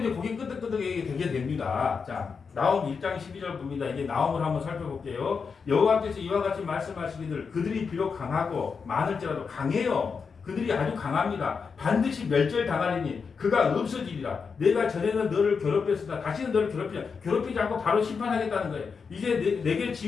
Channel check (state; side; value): quieter; right; 5.5 dB